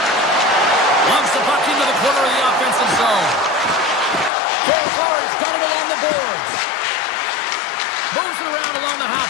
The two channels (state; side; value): drops out; right; at 4.3 s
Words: Lumps the puck into the corner of the offensive zone. Far's got it along the boards. Moves it around along the